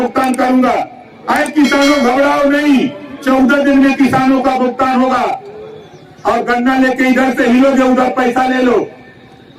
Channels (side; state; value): both; identical; correlation 1.00